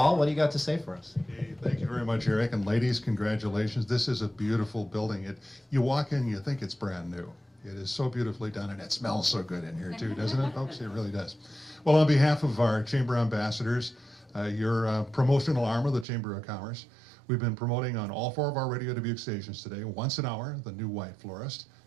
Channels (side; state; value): left; drops out; at 16.1 s